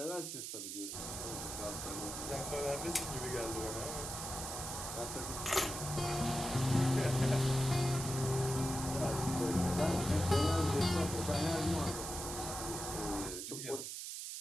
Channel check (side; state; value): right; noise; hiss, 6 dB below the sound